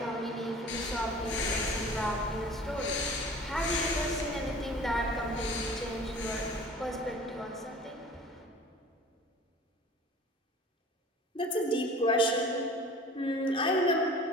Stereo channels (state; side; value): normal; both; correlation 0.44